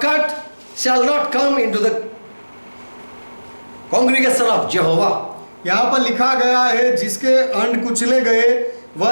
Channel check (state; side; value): inverted; both; correlation -1.00